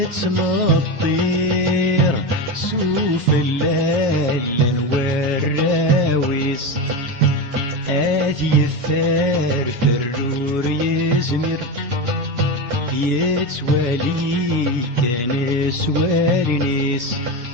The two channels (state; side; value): late; left; 8.2 ms